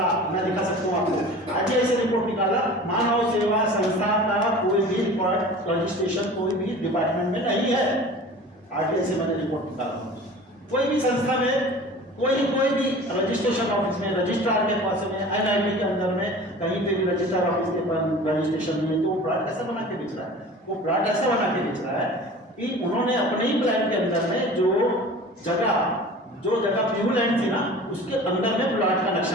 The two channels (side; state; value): both; normal; correlation 0.40